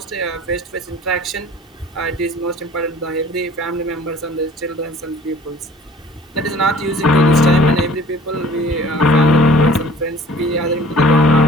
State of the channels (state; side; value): normal; both; correlation 0.51